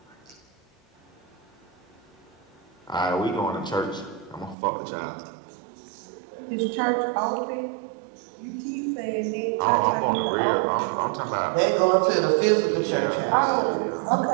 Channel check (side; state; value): left; drops out; at 4.5 s